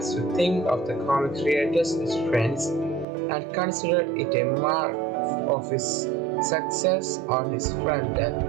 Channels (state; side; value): drops out; left; at 3.1 s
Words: to think of the comic creators as friends and considered it a mark of his success on his front end.